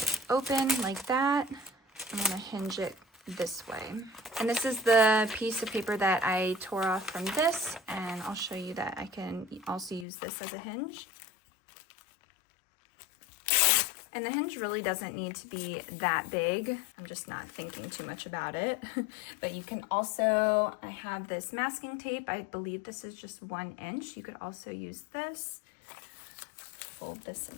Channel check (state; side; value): drops out; right; at 10.1 s